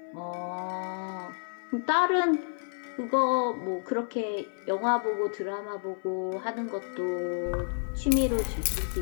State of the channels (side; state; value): right; silent; 58 dB below the other